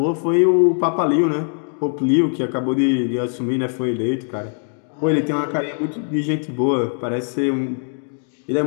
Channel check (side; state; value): right; silent; 57 dB below the other